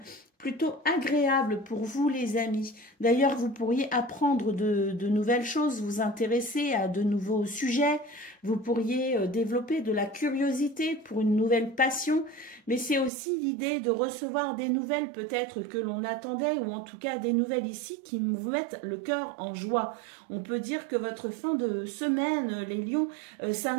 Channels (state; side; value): drops out; left; at 13.1 s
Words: plutôt agréable pour vous les amis. D'ailleurs, vous pourriez apprendre de nouvelles choses, vous intéresser à de nouveaux sujets. Vous pourriez développer de la curiosité pour une nouvelle passion. Mais c'est aussi l'idée de recevoir des nouvelles peut-être que l'on attendait, ou en tout cas des nouvelles ici qui vous mettent le cœur en joie. On peut dire que votre fin de semaine, les lions,